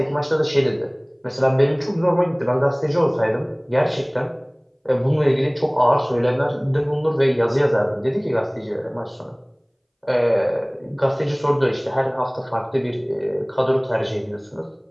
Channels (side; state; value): both; identical; correlation 1.00